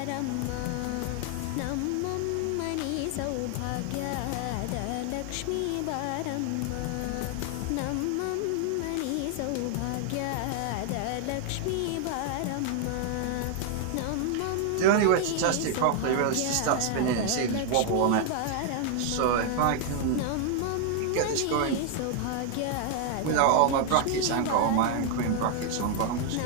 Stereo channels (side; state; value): both; different; correlation 0.00